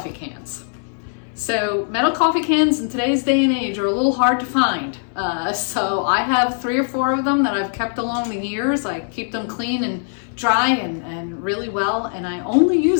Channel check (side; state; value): right; silent; 59 dB below the other